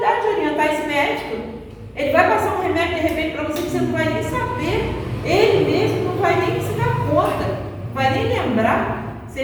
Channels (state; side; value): identical; both; correlation 1.00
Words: orientar esse médico. Ele vai passar um remédio de repente para você que você não vai nem saber. Ele mesmo não vai nem se dar conta, não vai nem lembrar. Se